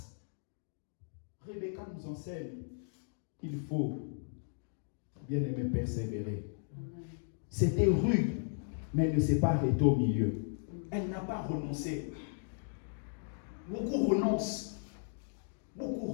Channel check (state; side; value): silent; right; digital silence